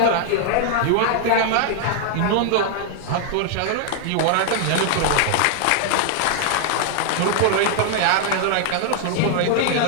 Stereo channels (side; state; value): both; different; correlation 0.00